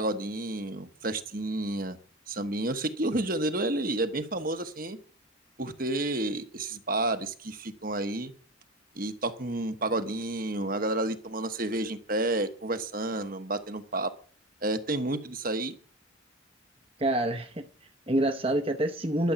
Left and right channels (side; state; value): both; normal; correlation 0.30